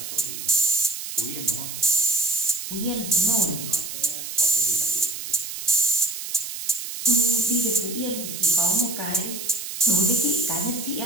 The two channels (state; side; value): noise; right; hiss, 7 dB below the sound